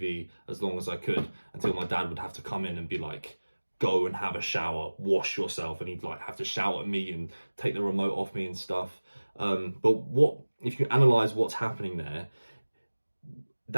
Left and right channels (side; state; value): both; inverted; correlation -1.00